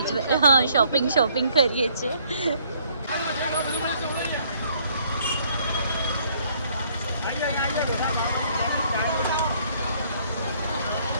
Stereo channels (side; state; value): both; inverted; correlation -0.64